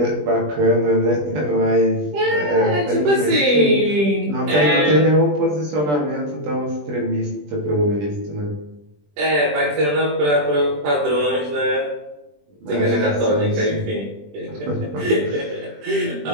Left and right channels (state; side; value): late; left; 20 ms